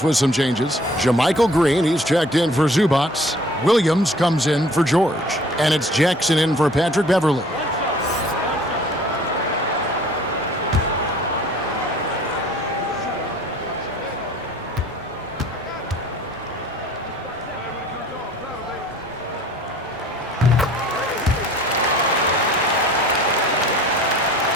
with some changes. JaMychal Green, he's checked in for Zubac. Williams comes in for George. And it's Jackson in for Patrick Beverley.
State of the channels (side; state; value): both; normal; correlation 0.51